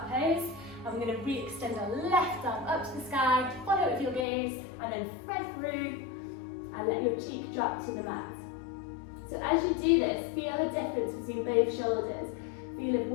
pose, and we're going to re-extend our left arm up to the sky, follow it with your gaze, and then thread through, and let your cheek drop to the mat. So as you do this, feel the difference between both shoulders. Feel if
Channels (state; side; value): drops out; right; at 4.2 s